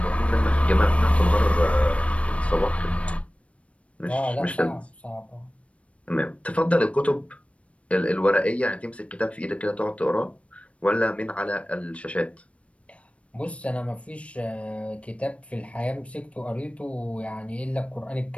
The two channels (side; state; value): right; late; 0.063 ms